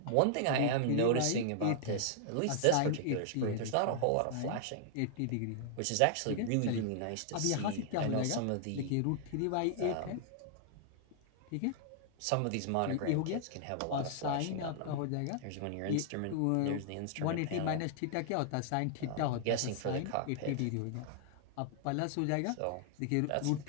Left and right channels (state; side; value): different; both; correlation -0.01